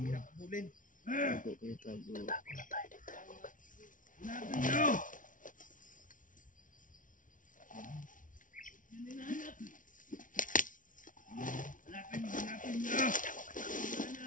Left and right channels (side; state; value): right; late; 0.38 ms